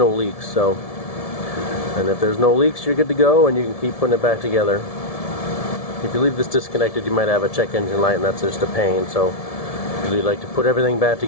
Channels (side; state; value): right; late; 1.7 ms